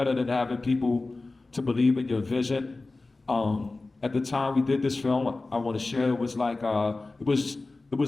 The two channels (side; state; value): right; quieter; 3.3 dB